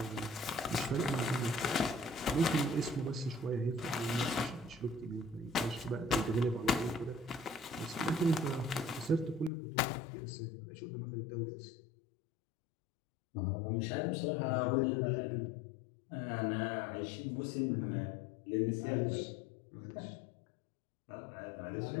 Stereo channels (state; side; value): drops out; right; at 9.5 s